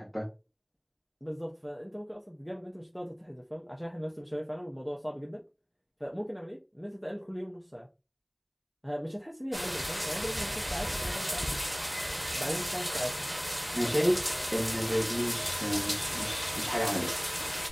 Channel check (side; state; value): both; identical; correlation 1.00